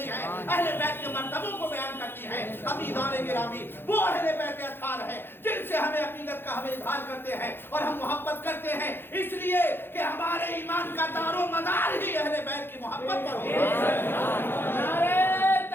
ہے، اہل بیت کے مرتبوں کو بیان کرتی ہے. ابھی گانے گرامی وہ اہل بیت اطہار ہے جن سے ہمیں عقیدت کا ہمیں اظہار کرتے ہیں اور ہم محبت کرتے ہیں، اس لیے کہ ہمارے ایمان کا دار و مدار ہی اہل بیت کی محبت پر ہے. نعرہ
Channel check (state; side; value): late; right; 0.10 ms